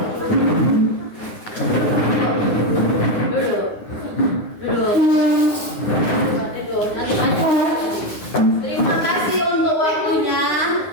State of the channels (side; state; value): right; late; 9.7 ms